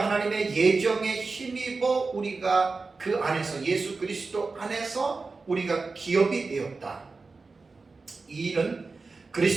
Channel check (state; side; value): quieter; left; 4.0 dB